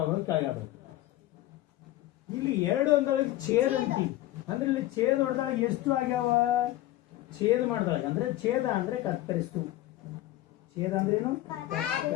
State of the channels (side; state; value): right; quieter; 15.5 dB